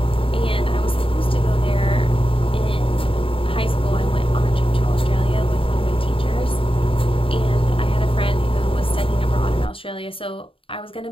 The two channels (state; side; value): late; right; 0.26 ms